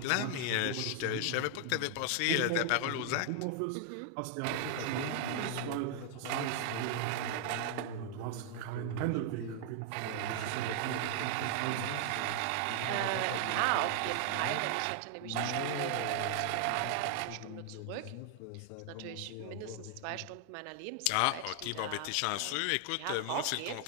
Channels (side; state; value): both; different; correlation 0.00